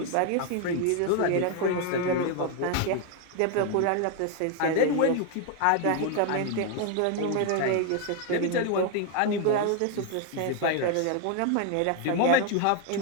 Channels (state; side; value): different; both; correlation 0.00